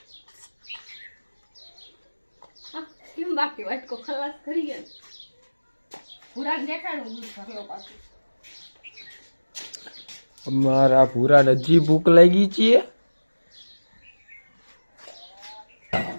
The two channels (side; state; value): both; inverted; correlation -1.00